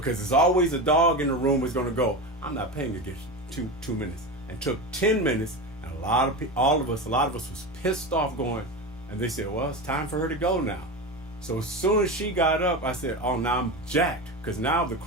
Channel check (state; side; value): normal; both; correlation 0.22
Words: there's always a dog in the room who's going to go, I'm not paying to get 2 minutes. And took 10 minutes, and a lot of us was pissed off going, and they said, well, it's time for her to go now. So as soon as she got up, I said, oh, now I'm jacked, because now the